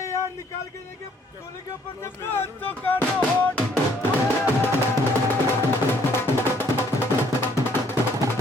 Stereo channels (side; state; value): both; normal; correlation 0.64